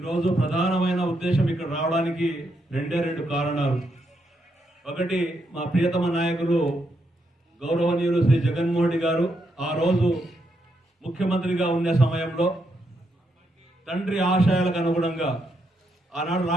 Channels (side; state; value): both; normal; correlation 0.79